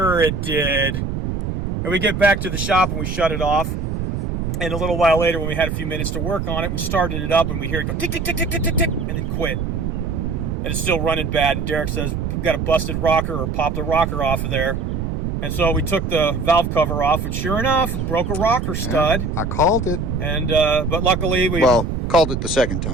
it did. And we get back to the shop and we shut it off. And a little while later, when we had a few minutes to work on it, we started it up and we hear it go tick, tick, tick, tick, tick, tick, tick, and then quit. And it's still running bad. And Derek says, got a busted rocker or popped the rocker off of there. And so we took the valve cover off, and sure enough, broke a rocker stud. Yeah, I called it. And but luckily we called it the second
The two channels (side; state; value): right; noise; rumble, 2 dB below the sound